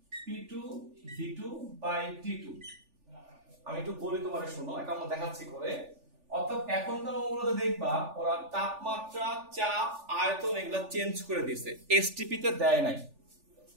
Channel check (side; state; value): left; late; 3.4 ms